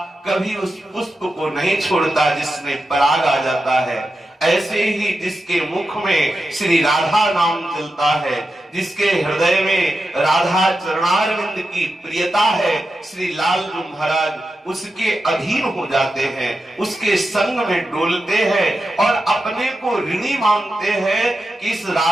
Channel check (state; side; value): normal; both; correlation 0.90